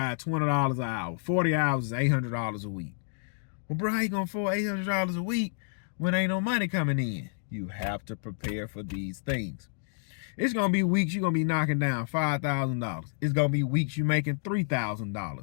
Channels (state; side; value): silent; right; digital silence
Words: $20 an hour. 40 hours is $800 a week. Well, bro, how you gonna afford $800 a week when ain't no money coming in? You have to prepare for these things. It's gonna be weeks you're gonna be knocking down $5,000. It's gonna be weeks you making